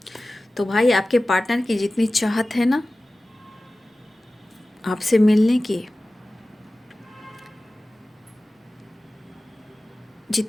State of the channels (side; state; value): both; normal; correlation 0.97